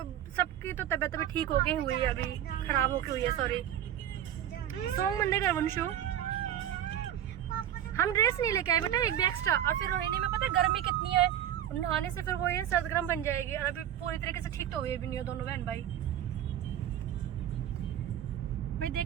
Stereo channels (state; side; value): quieter; left; 10.9 dB